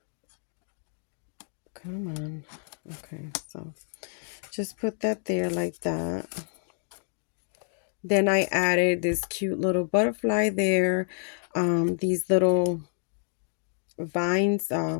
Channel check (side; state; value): right; silent; 59 dB below the other